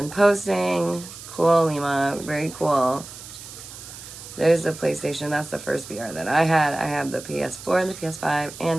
posting. Cool, Lima. Very cool. There's the PlayStation. That's the first VR that I had. I have the PS4 and the PS5.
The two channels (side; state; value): right; noise; hiss, 14 dB below the sound